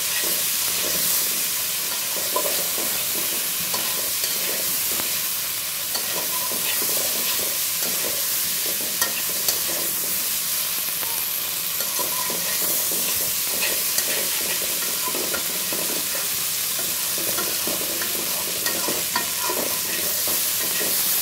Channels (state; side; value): identical; both; correlation 1.00